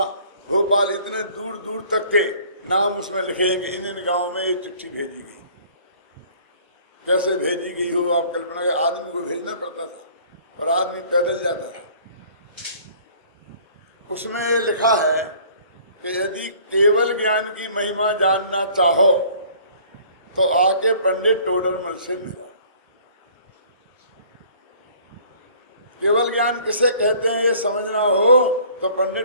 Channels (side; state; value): both; inverted; correlation -0.53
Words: भोपाल, इतने दूर दूर तक के नाम उसमें लिखे हैं कि इन इन गांवों में ये चिट्ठी भेजी गई। कैसे भेजी गई हो आप कल्पना के, आदमी को भेजना पड़ता था और आदमी पैदल जाता था। उसमें ये लिखा है कि यदि केवल ज्ञान की महिमा जानना चाहो तो आके पंडित टोडरमल से मिलो। केवल ज्ञान किसे कहते हैं ये समझना हो तो